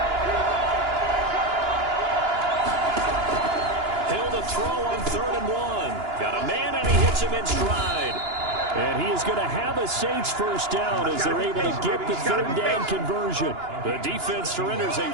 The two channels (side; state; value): left; late; 2.9 ms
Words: Throw on 3rd and 1. Got a man, and he hits him in stride. And he is going to have a Saints first down as they're able to get the 3rd down conversion. The defense surrenders a